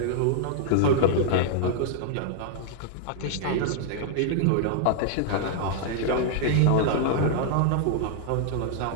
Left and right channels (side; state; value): both; different; correlation -0.01